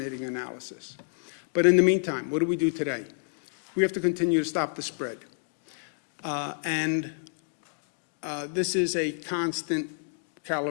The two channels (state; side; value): silent; right; digital silence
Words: analysis. But in the meantime, what do we do today? We have to continue to stop the spread. This is a constant